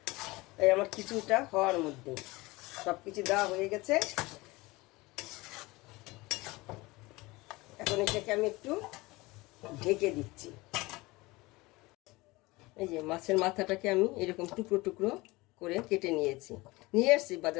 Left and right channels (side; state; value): right; quieter; 21.9 dB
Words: এই আমার কিছুটা হওয়ার মধ্যে সব কিছু দেওয়া হয়ে গেছে। এখন এটাকে আমি একটু ঢেকে দিচ্ছি। এই যে মাছের মাথাটাকে আমি এরকম টুকরো টুকরো করে কেটে নিয়ে আসছি